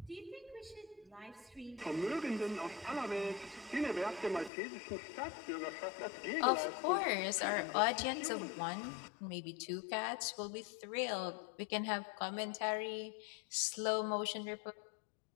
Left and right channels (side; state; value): right; drops out; at 4.5 s